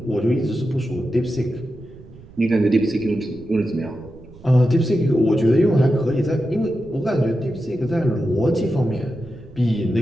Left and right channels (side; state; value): right; noise; rumble, 21 dB below the sound